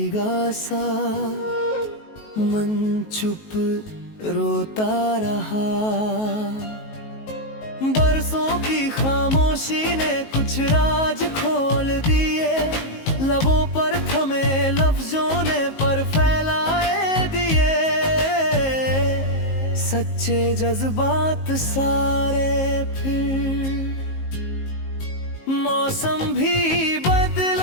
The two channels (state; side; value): late; right; 19 ms